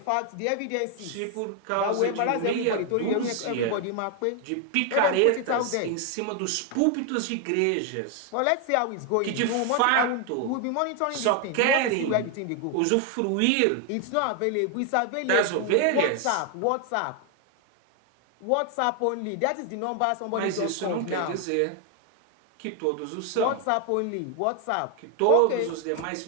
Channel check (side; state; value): both; different; correlation 0.01